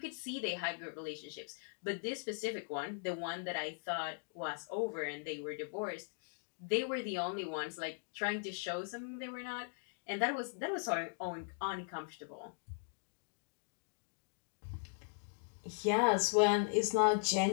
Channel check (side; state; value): right; silent; digital silence